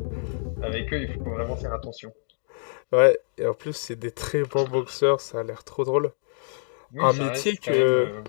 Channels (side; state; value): right; silent; digital silence